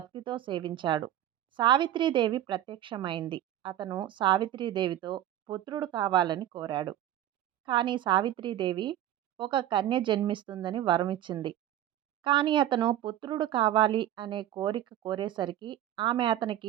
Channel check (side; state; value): left; quieter; 12.2 dB